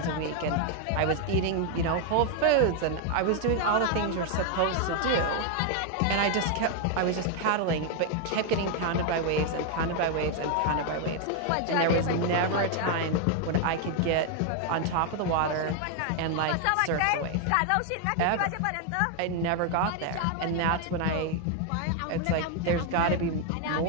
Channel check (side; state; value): both; different; correlation 0.01